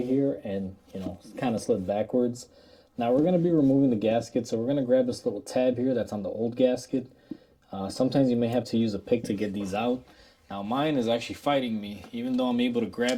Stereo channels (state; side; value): identical; both; correlation 1.00